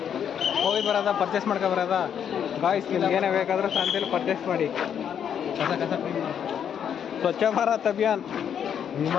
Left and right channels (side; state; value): right; quieter; 8.5 dB